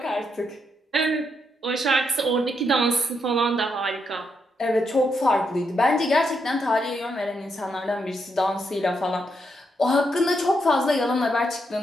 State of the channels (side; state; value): both; normal; correlation 0.80